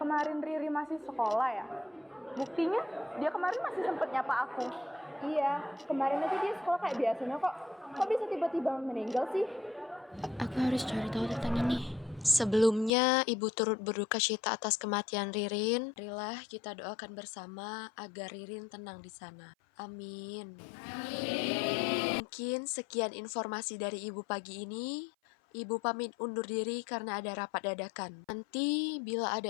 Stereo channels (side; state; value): right; drops out; at 12.9 s